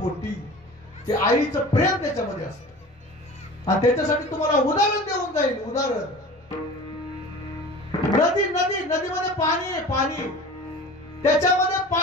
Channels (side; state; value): both; normal; correlation 0.39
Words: ते आईचं प्रेम त्याच्यामध्ये असतं. आणि त्याच्यासाठी तुम्हाला उदाहरण देऊन जाईल. उदाहरण, नदीमध्ये पाणी आहे. पाणी त्याच्यामध्ये